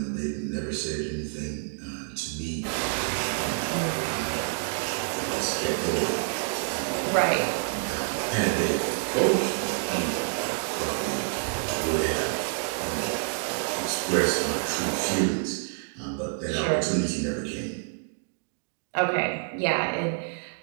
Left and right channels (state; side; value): silent; left; digital silence